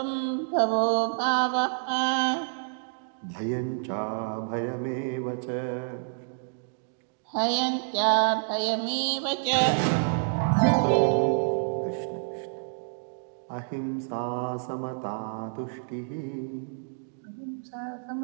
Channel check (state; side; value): silent; left; digital silence